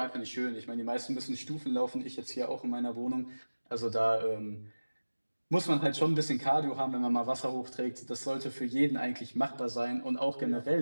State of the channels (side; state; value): both; inverted; correlation -1.00